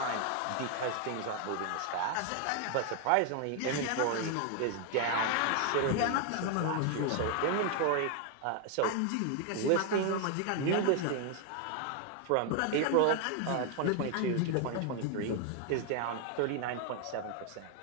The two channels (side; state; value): both; different; correlation 0.00